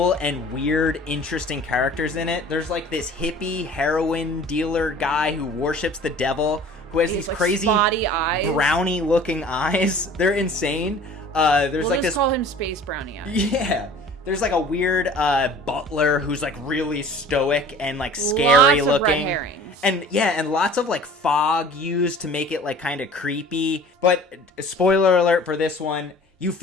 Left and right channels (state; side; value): normal; both; correlation 0.46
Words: and weird, interesting characters in it. There's like this hippie heroin dealer guy who worships the devil, who has these like crazy spotty eyes, brownie looking eyes. They're insane. Let's call him Space Brownie eyes. Yeah. There's like a weird butler who's like really stoic and like scary looking. Red herrings. And lots of like fog used to make it like kind of creepy. But spoiler alert for this one, you